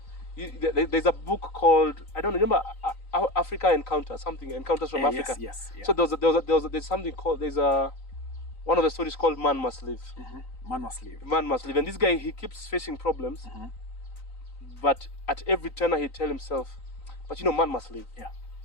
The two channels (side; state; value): right; late; 3.9 ms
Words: there's a book called, I don't remember, Africa Encounters from Africa. Yes. So there's something called, one of the stories called Man Must Live. Man must live. Man must live. And this guy, he keeps facing problems, but at every turn he tell himself, but you know, man must live. Yeah.